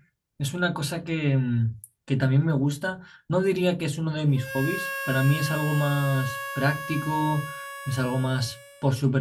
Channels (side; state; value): both; identical; correlation 1.00